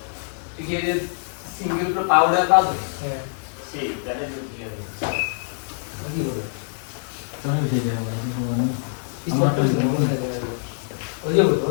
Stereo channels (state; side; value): silent; right; digital silence